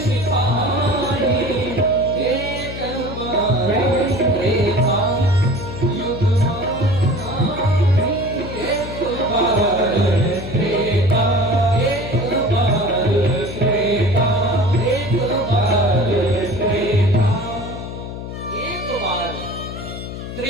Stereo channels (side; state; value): left; noise; hum, 9 dB below the sound